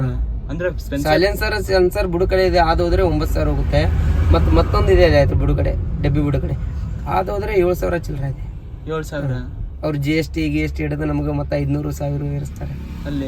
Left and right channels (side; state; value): both; identical; correlation 1.00